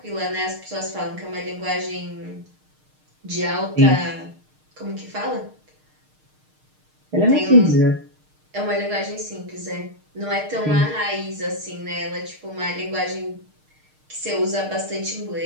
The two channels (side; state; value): left; late; 6.5 ms